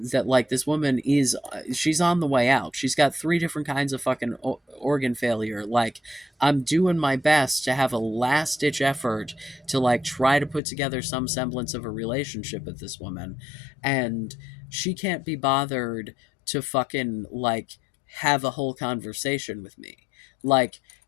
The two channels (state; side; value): drops out; right; at 10.6 s